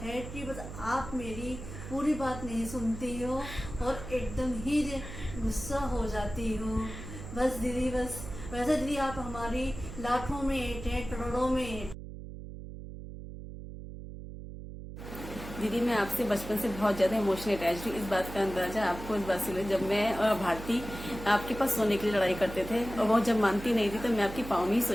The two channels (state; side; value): noise; right; hum, 11 dB below the sound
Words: है कि बस आप मेरी पूरी बात नहीं सुनती हो और एकदम ही गुस्सा हो जाती हो। बस दीदी, बस वैसे दीदी आप हमारी लाखों में एक हैं, करोड़ों में एक। दीदी मैं आपसे बचपन से बहुत ज़्यादा इमोशनल अटैच हूँ। इस बात का अंदाजा आपको इस बात से, जब मैं और भारती आपके पास सोने के लिए लड़ाई करते थे और वो जब मानती नहीं थी तो मैं आपकी पाँव में ही सो